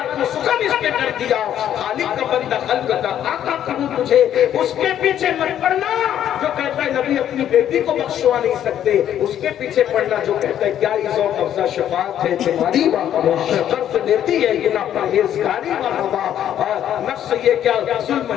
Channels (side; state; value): right; quieter; 10.6 dB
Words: سخن اس پہ کر دیا، خالق کا بندہ خلق کا آقا کہوں تجھے، اس کے پیچھے مت پڑنا جو کہتا ہے نبی اپنی بیٹی کو بخشوا نہیں سکتے، اس کے پیچھے پڑنا جو کہتا ہے کیا ذوق افزا شفاعت ہے تمہاری قرض لیتی ہے گناہ پرہیزگاری اور نفس یہ کیا